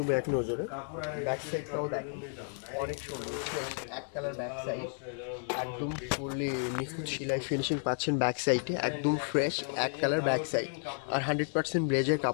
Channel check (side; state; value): right; silent; 56 dB below the other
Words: এক নজরে। ব্যাক সাইডটাও দেখেন অনেক সুন্দর, এক কালার ব্যাক সাইড, একদম ফুললি নিখুঁত সেলাই ফিনিশিং পাচ্ছেন ব্যাক সাইডে, একদম ফ্রেশ এক কালার ব্যাক সাইড। আর 100% ব্লেজার